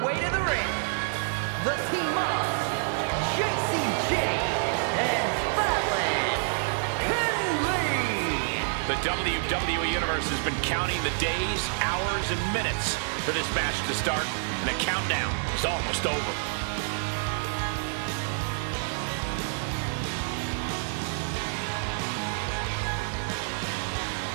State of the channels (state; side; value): silent; left; 59 dB below the other